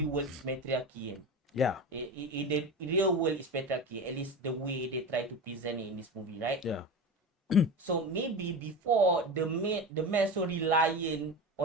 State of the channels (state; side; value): normal; both; correlation 0.26